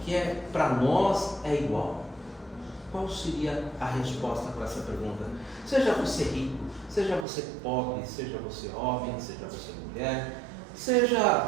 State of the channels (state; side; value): drops out; left; at 7.2 s